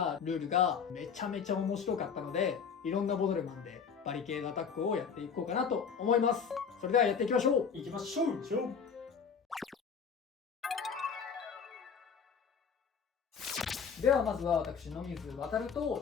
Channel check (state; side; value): quieter; right; 6.4 dB